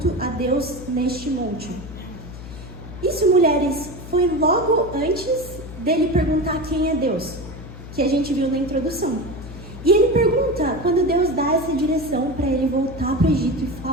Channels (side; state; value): left; noise; hum, 13 dB below the sound